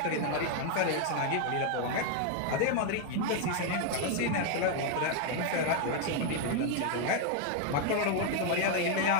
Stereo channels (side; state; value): both; different; correlation 0.01